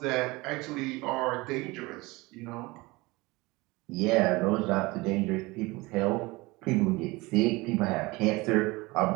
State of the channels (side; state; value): left; quieter; 22.8 dB